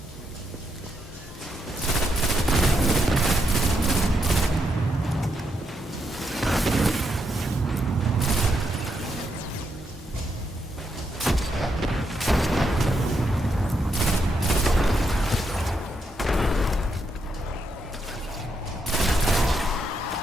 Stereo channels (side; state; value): both; normal; correlation 0.80